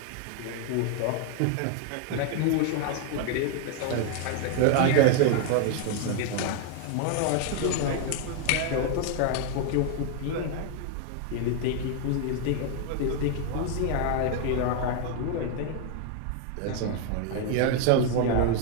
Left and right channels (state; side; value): different; both; correlation 0.00